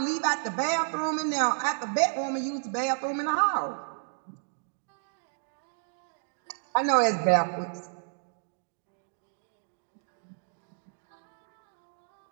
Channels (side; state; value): left; silent; digital silence